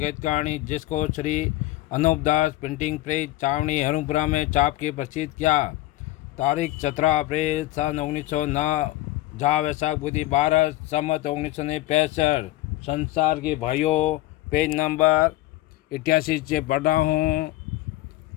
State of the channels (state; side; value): quieter; right; 17.0 dB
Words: जिसको श्री अनूपदास प्रिंटिंग प्रेस चावनी हरुपुरा में छाप के प्रसिद्ध किया। तारीख 17 अप्रैल सन 1909 जा वैशाख बुधि 12 सम्मत 1965। संसार के भाइयों, पेज नंबर 88 से पढ़ रहा हूँ।